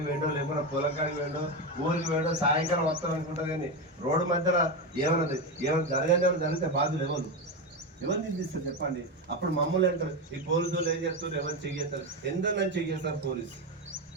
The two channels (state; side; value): normal; both; correlation 0.14